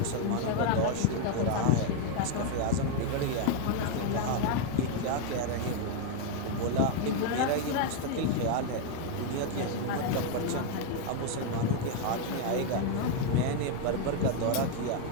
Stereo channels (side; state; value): both; different; correlation 0.00